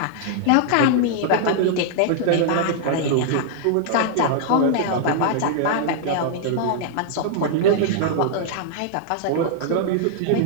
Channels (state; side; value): different; both; correlation -0.01